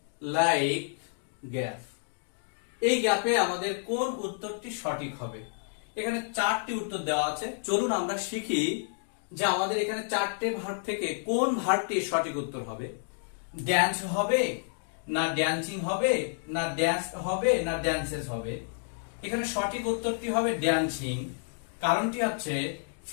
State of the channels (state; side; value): silent; right; digital silence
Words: like gap. এই গ্যাপে আমাদের কোন উত্তরটি সঠিক হবে? এখানে চারটি উত্তর দেওয়া আছে। চলুন আমরা শিখি যে আমাদের এখানে চারটে ভার্ব থেকে কোন ভার্বটি সঠিক উত্তর হবে। ড্যান্স হবে, না ড্যান্সিং হবে, না ড্যান্স হবে, না ড্যান্সেস হবে। এখানে সঠিক উত্তরটি হবে ড্যান্সিং। কারণটি হচ্ছে